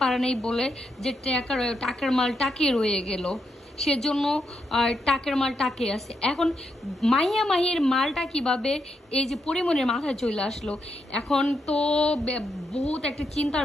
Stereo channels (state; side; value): normal; both; correlation 0.81